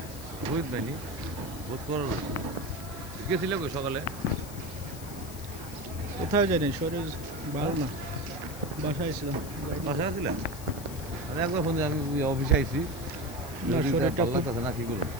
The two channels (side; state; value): left; noise; hiss, 14 dB below the sound